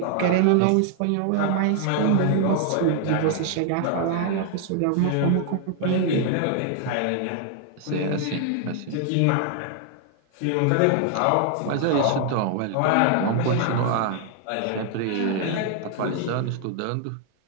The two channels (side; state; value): both; different; correlation 0.00